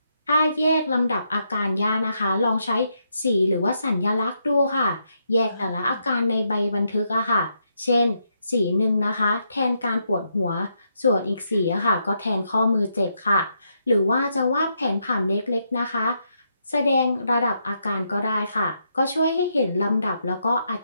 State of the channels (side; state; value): both; inverted; correlation -0.79